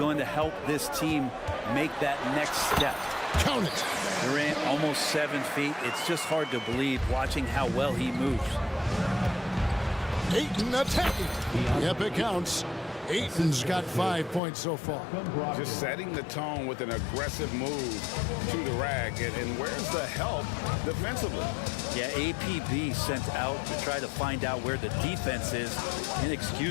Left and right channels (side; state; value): right; drops out; at 14.4 s